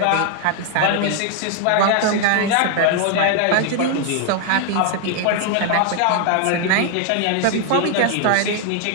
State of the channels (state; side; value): different; both; correlation 0.00